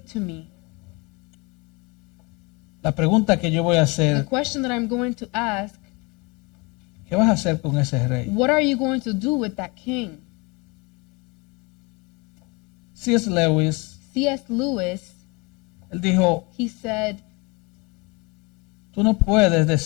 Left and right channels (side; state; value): right; quieter; 27.0 dB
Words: to me. La pregunta que yo voy a The hacer: question that I'm going to ask, ¿qué vas a hacer con ese rey? what are you going to do with that king? C.S. Lewis, C.S. Lewis, él dijo: he said, tú no puedes